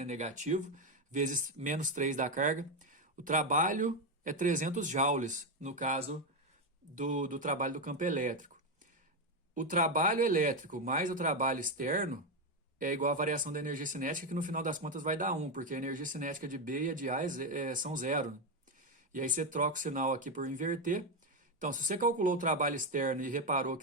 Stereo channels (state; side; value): normal; both; correlation 0.08